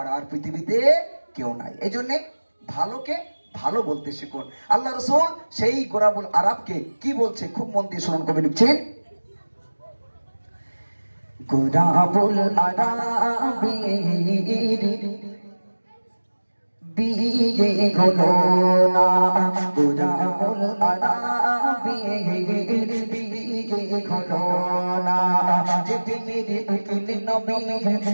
আর পৃথিবীতে কেউ নাই। এই জন্যে ভালোকে ভালো বলতে শিখুন। আল্লাহ রাসূল সেই গোরাবুল আরবকে কি বলছে খুব মন দিয়ে শুনুন। কবি লিখছেন, গোরাবুল আরবের বিয়ে হলো না, গোরাবুল আরবের বিয়ে হলো না। যে বিয়ের উকিল নবী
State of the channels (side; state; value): both; inverted; correlation -1.00